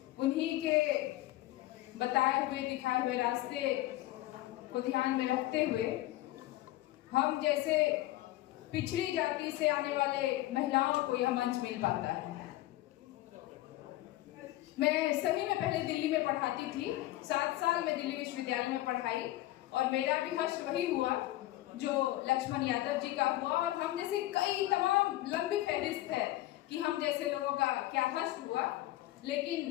उन्हीं के बताए हुए दिखाए हुए रास्ते को ध्यान में रखते हुए हम जैसे पिछड़ी जाति से आने वाले महिलाओं को यह मंच मिल पाता है। मैं सही में पहले दिल्ली में पढ़ाती थी, 7 साल में दिल्ली विश्वविद्यालय में पढ़ाई और मेरा भी हश्र वही हुआ जो लक्ष्मण यादव जी का हुआ, और हम जैसे कई तमाम लंबी फहरिस्त है कि हम जैसे लोगों का क्या हश्र हुआ।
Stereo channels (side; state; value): right; quieter; 16.3 dB